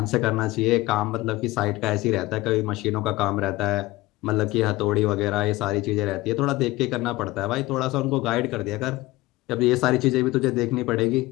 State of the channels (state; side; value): quieter; right; 19.4 dB